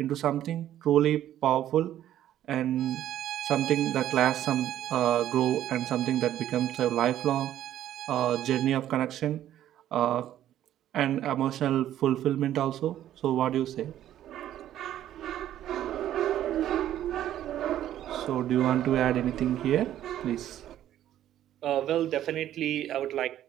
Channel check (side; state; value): left; quieter; 12.0 dB